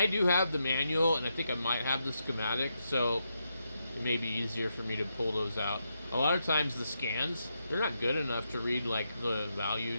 do have the manual, and I think I might have the schematic, so it may be easier for me to pull those out. A lot of times the scans, they're not good enough to read like the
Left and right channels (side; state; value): both; inverted; correlation -0.83